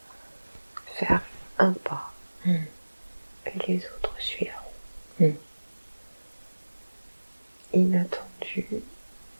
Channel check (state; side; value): inverted; both; correlation -1.00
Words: Faire un pas. Et les autres suivront. Inattendu.